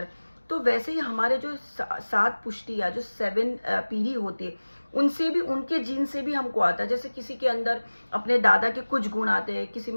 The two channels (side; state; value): both; inverted; correlation -1.00